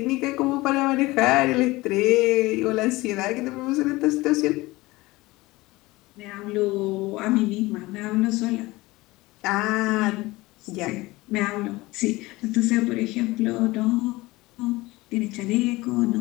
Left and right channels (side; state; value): right; quieter; 20.5 dB